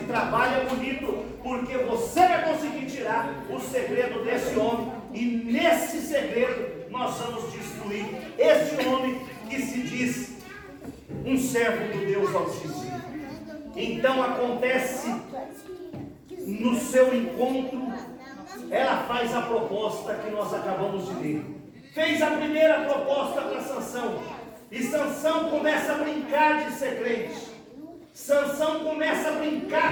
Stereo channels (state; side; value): identical; both; correlation 1.00